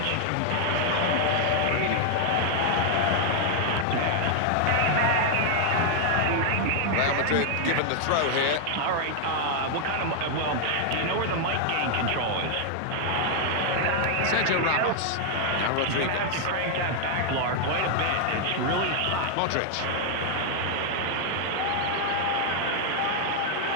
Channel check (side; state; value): both; different; correlation 0.00